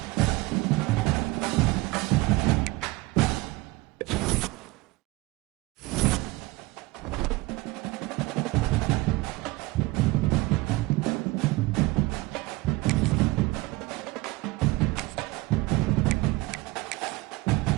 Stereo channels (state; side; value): quieter; left; 21.1 dB